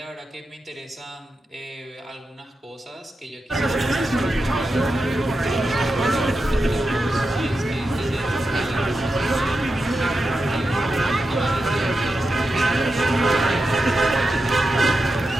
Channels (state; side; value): normal; both; correlation 0.89